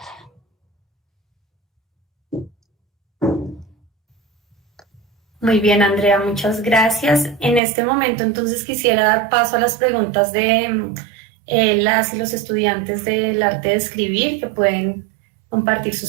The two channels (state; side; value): drops out; left; at 7.6 s